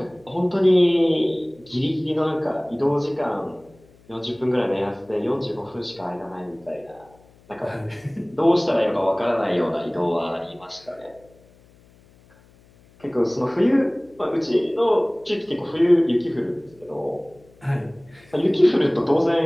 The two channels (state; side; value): noise; left; hum, 29 dB below the sound